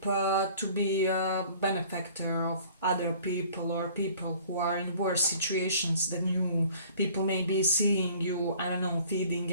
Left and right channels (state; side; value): inverted; both; correlation -0.51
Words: to be a benefactor of other people, or people who are in worse situations than you. People may be seeing you, I don't know,